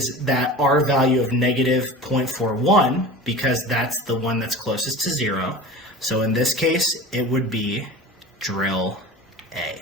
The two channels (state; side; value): normal; both; correlation 0.35